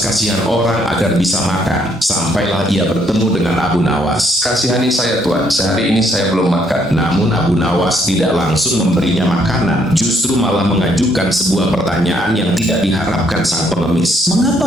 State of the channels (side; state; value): both; normal; correlation 0.69